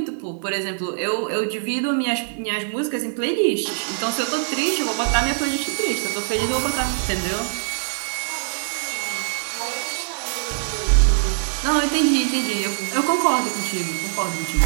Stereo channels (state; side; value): silent; left; digital silence